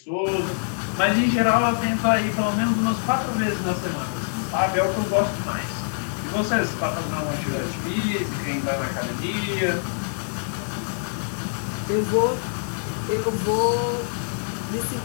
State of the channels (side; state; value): right; silent; 62 dB below the other